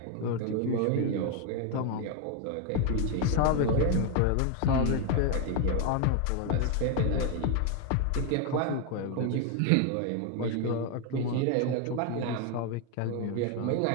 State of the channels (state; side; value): different; both; correlation 0.01